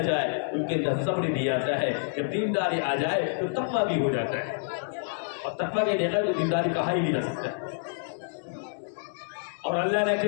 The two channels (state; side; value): silent; right; 59 dB below the other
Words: جائے ان کے اندر صبر بھی آتا ہے، جب دینداری آ جائے تو تقویٰ بھی ہو جاتا ہے، اور تقویٰ کے بغیر تو دینداری کہا ہی نہیں جا سکتا۔ اور اللہ نہ